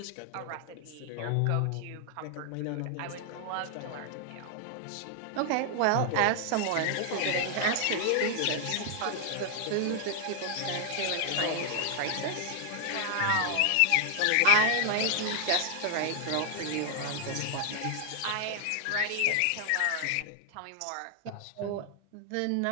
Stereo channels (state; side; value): different; both; correlation 0.00